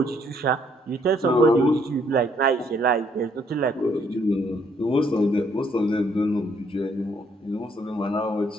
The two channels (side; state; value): both; normal; correlation 0.68